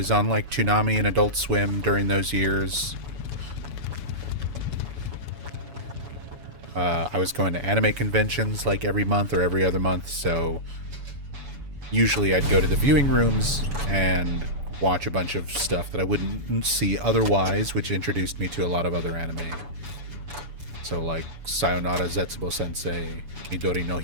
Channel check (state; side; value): late; left; 7.0 ms